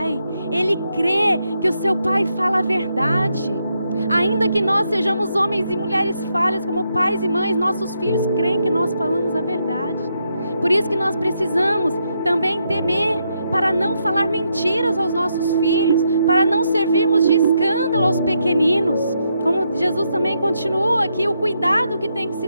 Ele crê que o seu pai fala a verdade. Ainda que nós sejamos homens e mulheres falhas, como pais e mães, nossos filhos creem que nós falamos a verdade. Por isso que nós precisamos também temer para não falar mentiras aos nossos filhos, para não servirmos de escândalo aos pequeninos. Como Jesus também continua aqui, o cuidado que tem que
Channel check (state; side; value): inverted; both; correlation -0.80